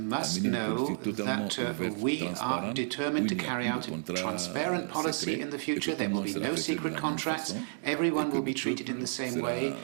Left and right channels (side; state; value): left; silent; digital silence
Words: à mener une politique totalement ouverte, transparente, où il n'y a plus de contrats secrets et que tout le monde sera traité de la même façon et que le peuple sera